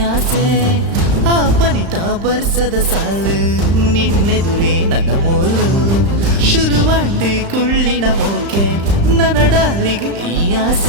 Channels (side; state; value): left; late; 35 ms